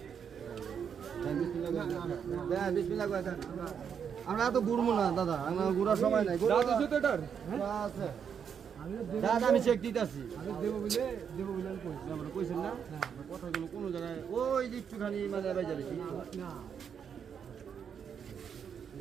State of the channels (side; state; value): left; quieter; 7.5 dB